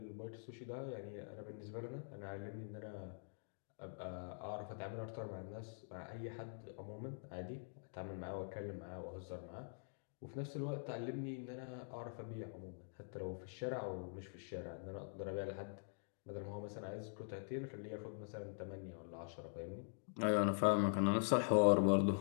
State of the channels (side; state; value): right; silent; digital silence